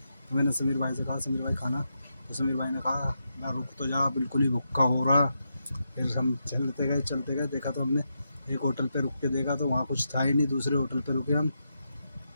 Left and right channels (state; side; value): inverted; both; correlation -0.85